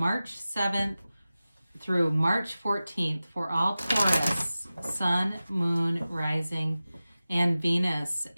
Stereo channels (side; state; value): both; inverted; correlation -0.96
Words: 7th through March 14th for all Taurus, Sun, Moon, Rising, and Venus.